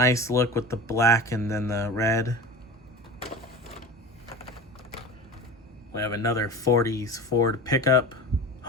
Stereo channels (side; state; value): both; normal; correlation 0.32